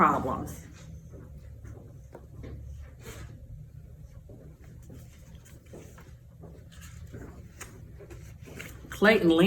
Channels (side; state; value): both; identical; correlation 1.00